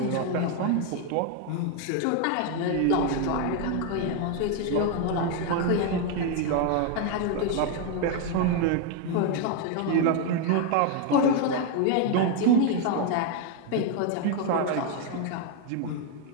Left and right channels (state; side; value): different; both; correlation 0.01